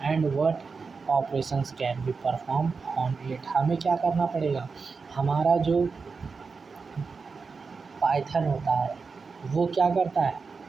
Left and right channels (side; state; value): left; quieter; 4.8 dB